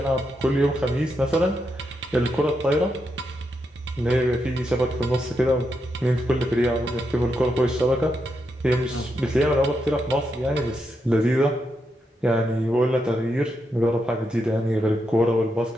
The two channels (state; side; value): normal; both; correlation 0.83